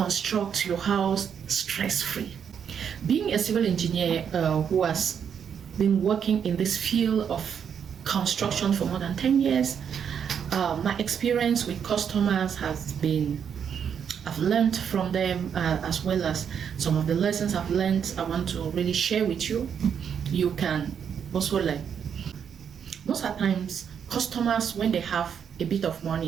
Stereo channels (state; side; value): quieter; left; 7.7 dB